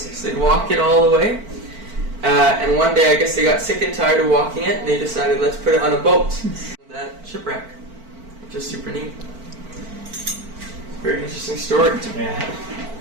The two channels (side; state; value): left; late; 4.5 ms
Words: they'd walk it all the way. And one day I guess they got sick and tired of walking it, and they decided let's put it on a boat. That shipwreck, which is super neat. Very interesting story. Yeah.